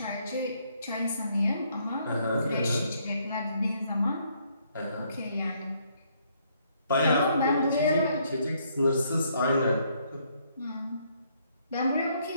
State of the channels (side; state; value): both; inverted; correlation -0.69